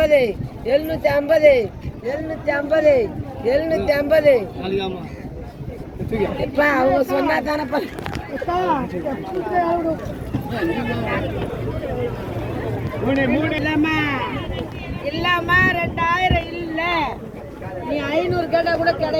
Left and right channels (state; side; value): identical; both; correlation 1.00